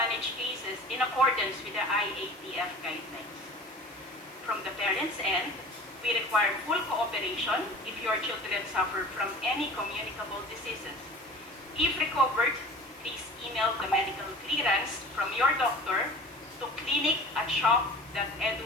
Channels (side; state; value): both; normal; correlation 0.41